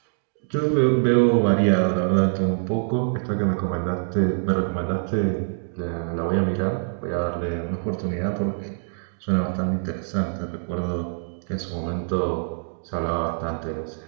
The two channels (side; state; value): left; silent; digital silence